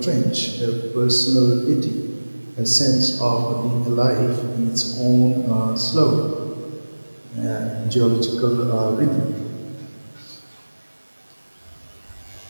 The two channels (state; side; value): inverted; both; correlation -1.00